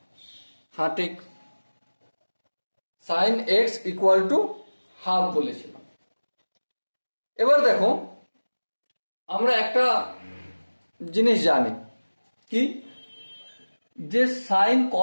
হ্যাঁ ঠিক, sine x equal to half বলেছিলাম। এবার দেখো, আমরা একটা জিনিস জানি কি, যে সাইন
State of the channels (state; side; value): inverted; both; correlation -1.00